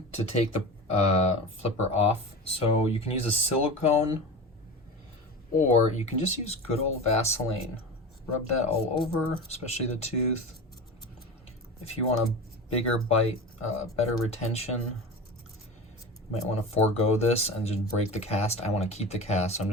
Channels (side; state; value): both; normal; correlation 0.28